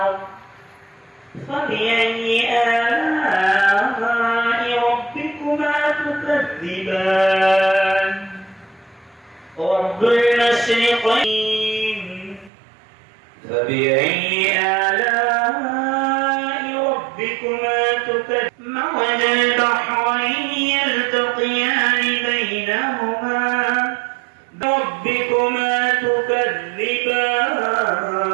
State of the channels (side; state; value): left; drops out; at 12.5 s